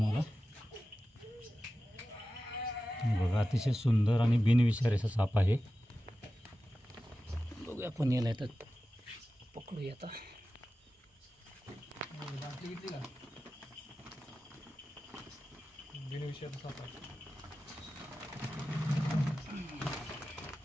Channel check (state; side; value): normal; both; correlation 0.94